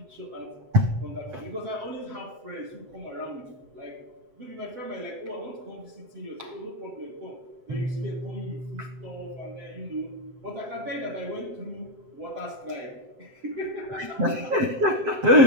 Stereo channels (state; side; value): late; left; 7.8 ms